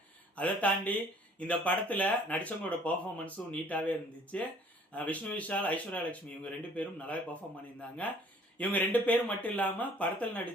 அதை தாண்டி இந்த படத்தில் நடித்தவங்களோட பர்ஃபார்மன்ஸும் நீட்டாகவே இருந்துச்சு. விஷ்ணு விஷால், ஐஸ்வர்யலட்சுமி இவங்க 2 பேரும் நல்லாவே பர்ஃபார்ம் பண்ணியிருந்தாங்க. இவங்க 2 பேரும் மட்டும் இல்லாமல் படத்தில்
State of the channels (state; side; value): normal; both; correlation 0.56